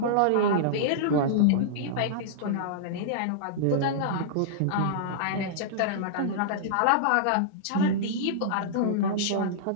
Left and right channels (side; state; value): both; different; correlation -0.02